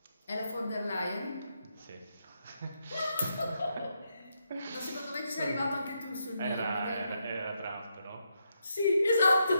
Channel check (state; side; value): inverted; both; correlation -0.81